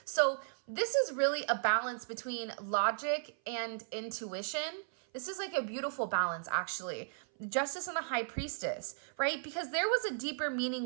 So this is really a balance between logic and intuition. This is like a beautiful balance, actually. Justice and the High Priestess, right? Because there was a deeper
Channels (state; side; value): silent; left; 54 dB below the other